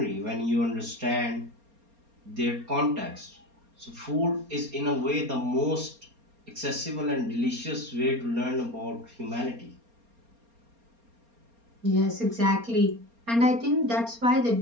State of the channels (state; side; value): late; left; 4.3 ms